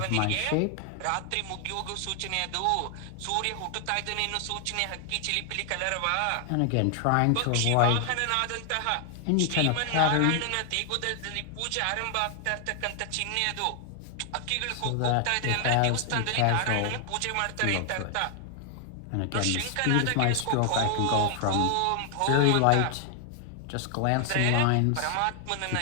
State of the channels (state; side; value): different; both; correlation 0.00